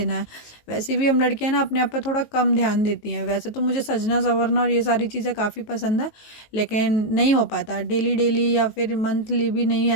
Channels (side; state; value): right; late; 19 ms